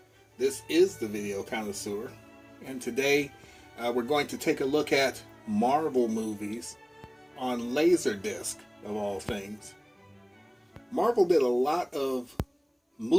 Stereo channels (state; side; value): identical; both; correlation 1.00